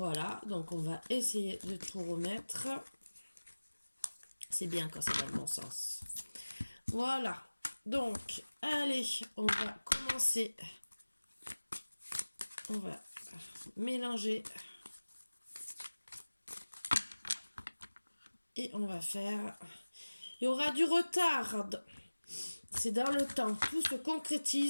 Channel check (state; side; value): inverted; both; correlation -1.00